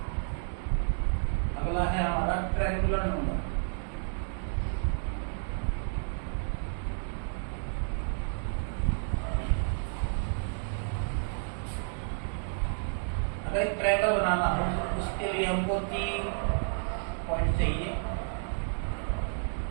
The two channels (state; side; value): silent; left; 57 dB below the other